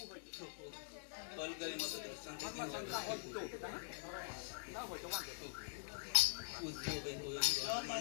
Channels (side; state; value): right; silent; digital silence